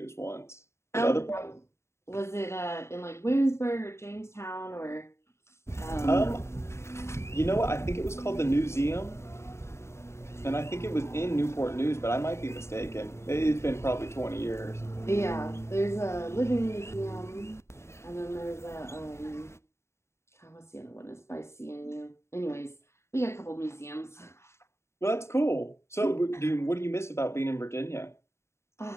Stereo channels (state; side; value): late; right; 0.13 ms